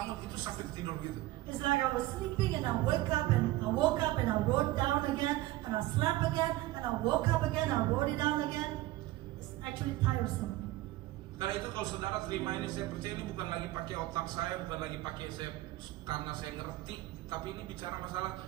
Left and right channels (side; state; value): left; quieter; 16.9 dB